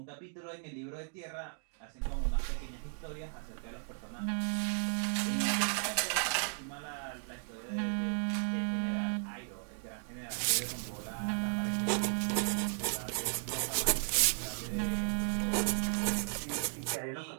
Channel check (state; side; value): silent; left; 54 dB below the other